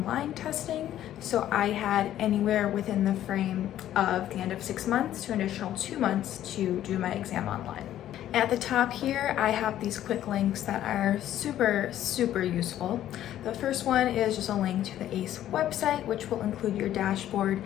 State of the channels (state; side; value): quieter; right; 12.2 dB